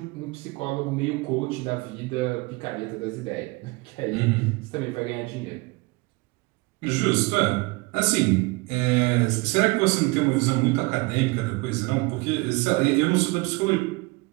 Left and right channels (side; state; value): left; quieter; 25.0 dB